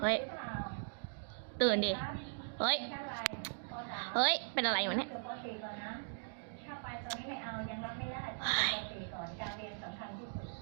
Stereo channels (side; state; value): left; silent; digital silence